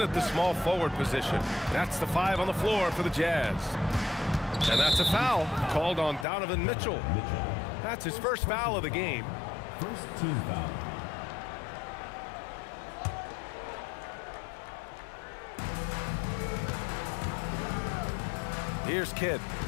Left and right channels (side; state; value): right; drops out; at 6.2 s